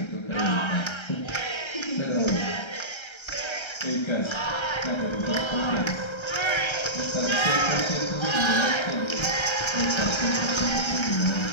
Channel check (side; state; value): right; late; 1.3 ms